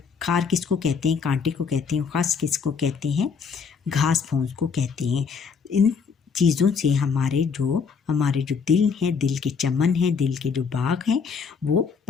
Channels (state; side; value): quieter; right; 5.8 dB